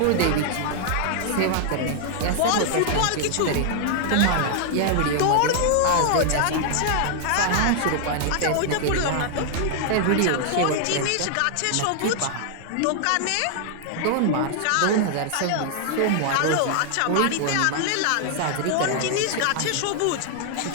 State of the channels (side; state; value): both; different; correlation 0.00